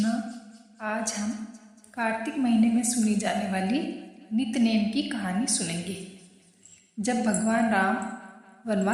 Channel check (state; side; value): identical; both; correlation 1.00